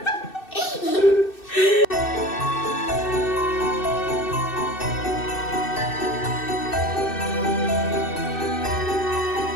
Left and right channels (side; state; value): right; late; 2.6 ms